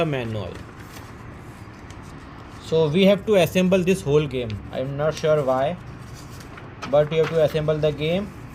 manual. So we have to assemble this whole game. I'm not sure why, but you have to assemble the game.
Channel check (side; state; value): both; identical; correlation 1.00